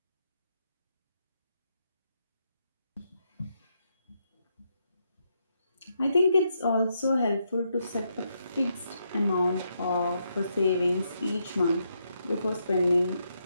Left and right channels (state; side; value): inverted; both; correlation -0.80